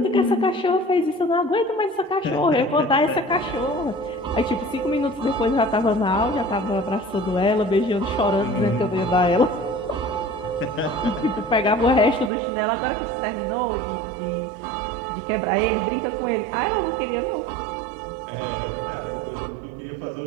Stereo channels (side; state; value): left; drops out; at 12.3 s